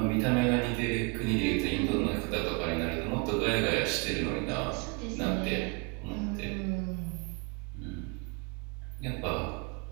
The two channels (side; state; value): left; quieter; 30.0 dB